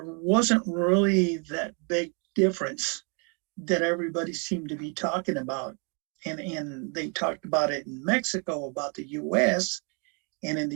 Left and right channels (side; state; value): left; quieter; 36.3 dB